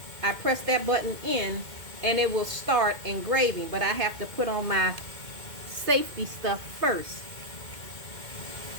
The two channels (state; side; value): late; left; 2.2 ms